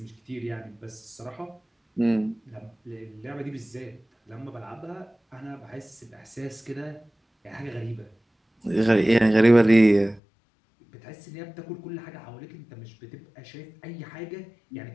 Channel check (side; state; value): right; drops out; at 10.2 s